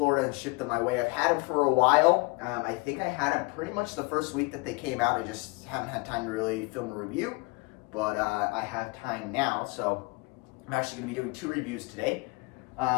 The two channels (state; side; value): quieter; right; 27.1 dB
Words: and ship them my way. I've had them for a while. I think I had them pretty much the first week that they came out. I just haven't had time to really film a review, but I have time now, so I'm actually going to be doing 2 reviews today.